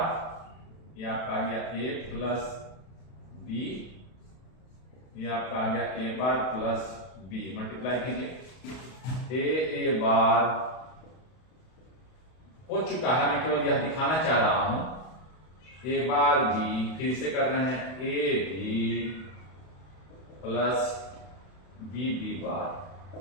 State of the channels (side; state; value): right; late; 32 ms